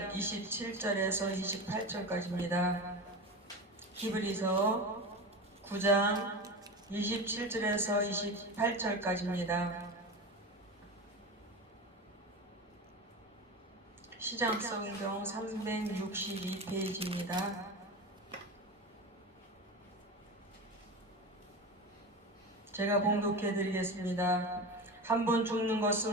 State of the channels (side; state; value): both; normal; correlation 0.26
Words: 27절에서 28절까지입니다. 히브리서 9장 27절에서 28절까지입니다. 시장성경 362페이지입니다. 제가 봉독해 드리겠습니다. 한 번 죽는